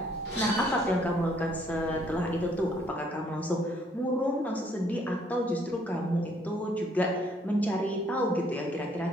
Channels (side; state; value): both; normal; correlation 0.65